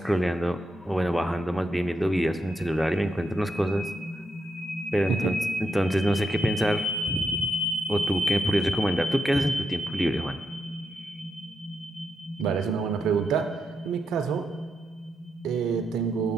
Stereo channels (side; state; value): both; normal; correlation 0.83